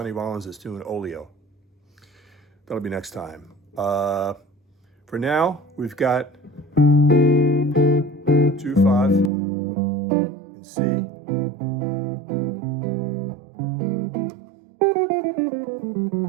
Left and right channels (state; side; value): drops out; left; at 9.3 s